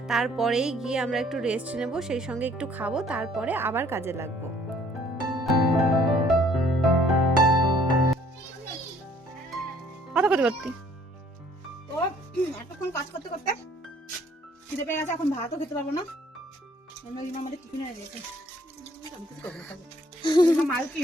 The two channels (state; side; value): normal; both; correlation 0.60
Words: তারপরেই গিয়ে আমরা একটু রেস্ট নেব, সেই সঙ্গে একটু খাবো, তারপরে আবার কাজে লাগবো। কথা করতে করতে তো এতক্ষণ কাজ করতে করতে খিদে পেয়ে গেছে, এখন ভাতও খেতে পারবো না। আমাদের টিফিনে দিয়েছে